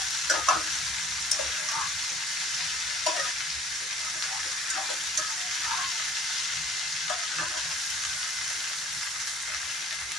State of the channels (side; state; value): both; normal; correlation 0.52